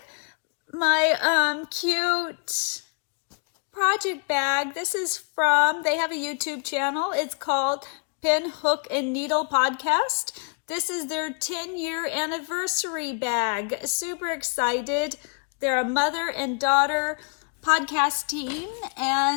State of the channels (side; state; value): right; quieter; 39.9 dB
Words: my cute project bag. This is they have a YouTube channel. It's called Pin, Hook, and Needle Podcast. This is their 10-year anniversary bag. Super excited. They're a mother and daughter podcast team,